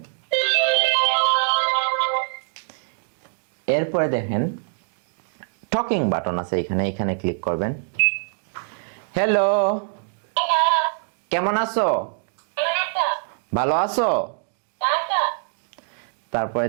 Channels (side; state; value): left; silent; digital silence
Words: এরপরে দেখেন টকিং বাটন আছে এখানে, এখানে ক্লিক করবেন। হ্যালো, কেমন আছো? ভালো আছো? তারপরে